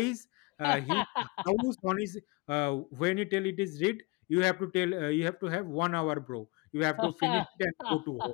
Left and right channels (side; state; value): right; quieter; 26.4 dB